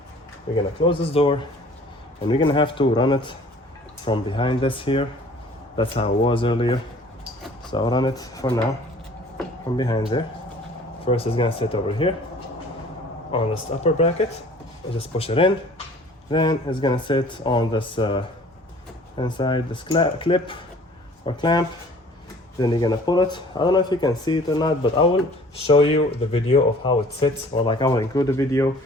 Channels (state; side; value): normal; both; correlation 0.51